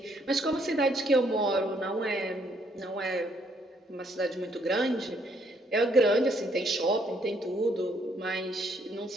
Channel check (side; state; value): both; normal; correlation 0.69